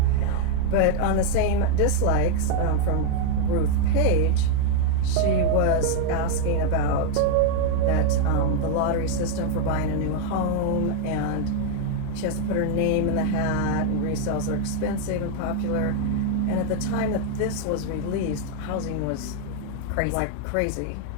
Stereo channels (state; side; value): different; both; correlation 0.00